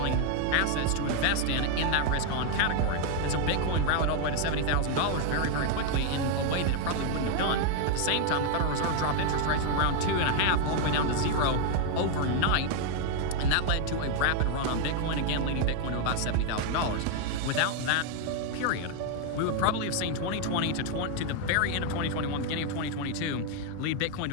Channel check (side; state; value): both; different; correlation 0.01